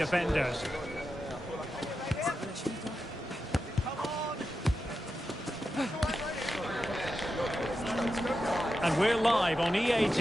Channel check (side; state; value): both; normal; correlation 0.89